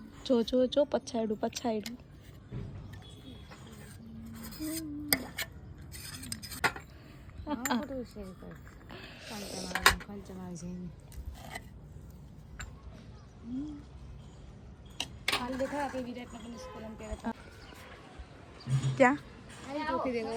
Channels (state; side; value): identical; both; correlation 1.00